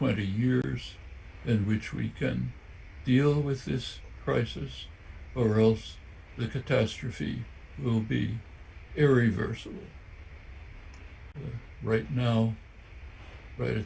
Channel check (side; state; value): both; identical; correlation 1.00